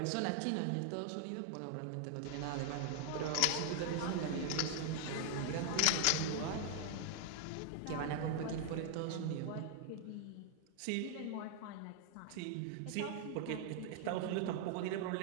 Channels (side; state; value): both; different; correlation 0.00